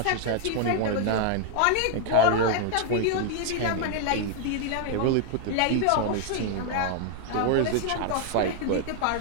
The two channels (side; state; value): both; different; correlation 0.00